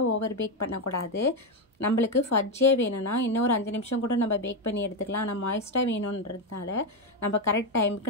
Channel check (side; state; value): both; normal; correlation 0.08